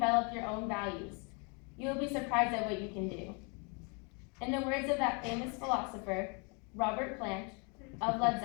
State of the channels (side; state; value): right; quieter; 34.1 dB